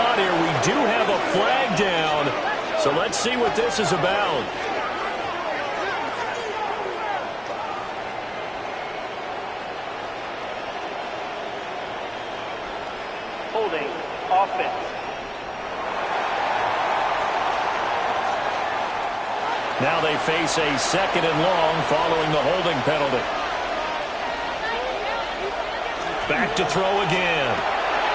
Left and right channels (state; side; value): identical; both; correlation 1.00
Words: here. We do have a flag down. So let's see what this is about. Holding offense. Now they face a 2nd and long following the holding penalty. Back to throw again.